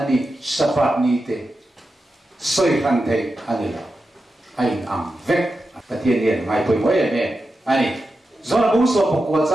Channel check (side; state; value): both; normal; correlation 0.90